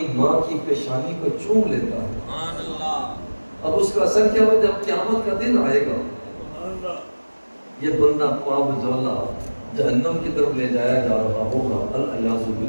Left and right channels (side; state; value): both; inverted; correlation -1.00